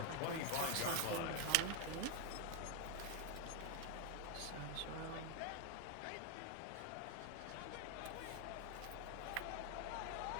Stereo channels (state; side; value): different; both; correlation 0.01